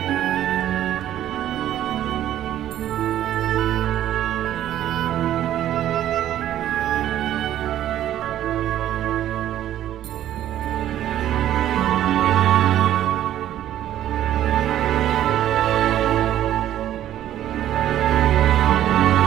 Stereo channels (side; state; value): left; quieter; 12.1 dB